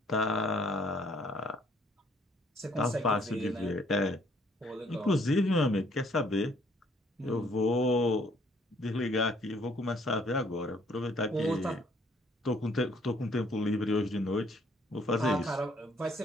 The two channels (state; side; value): normal; both; correlation 0.64